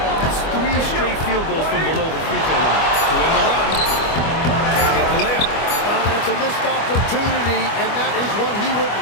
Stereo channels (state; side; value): late; right; 25 ms